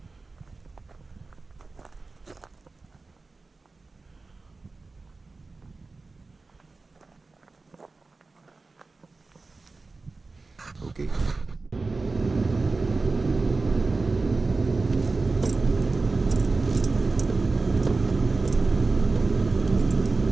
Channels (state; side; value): quieter; left; 3.7 dB